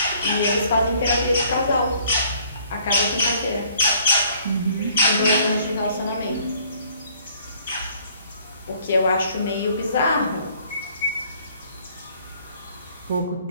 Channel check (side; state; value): both; inverted; correlation -0.60